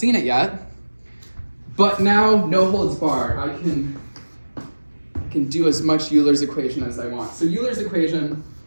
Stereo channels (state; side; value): inverted; both; correlation -1.00